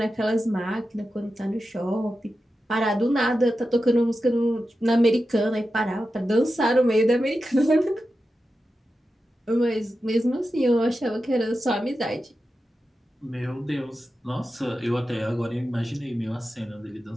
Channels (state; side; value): normal; both; correlation 0.91